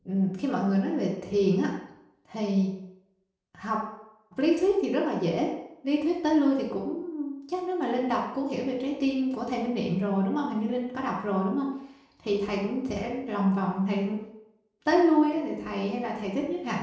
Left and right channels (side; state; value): both; identical; correlation 1.00